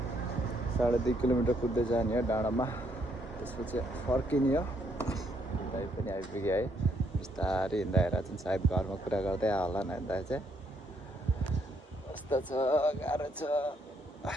2.5 किलोमिटर कुद्दै जाने हो डाँडामा, त्यसपछि फर्किने हो। दाइ पनि आइपुग्यो है। बिस्तारै हिँड्दा हेरेर चाहिँ सायद घरमा कुरा गर्दै होला नि दाइ चाहिँ। कस्तो छ, गाह्रो छ।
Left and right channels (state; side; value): normal; both; correlation 0.72